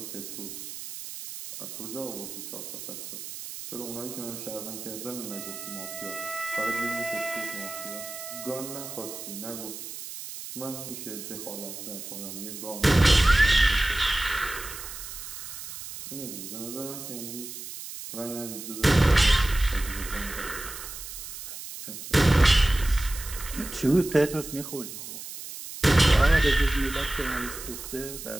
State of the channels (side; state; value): right; noise; hiss, 10 dB below the sound